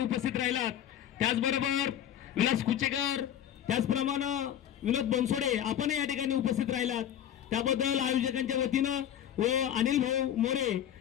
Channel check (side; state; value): right; quieter; 10.4 dB